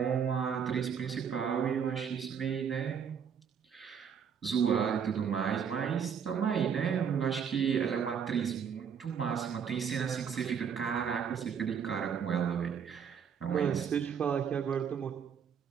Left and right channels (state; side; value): quieter; left; 7.3 dB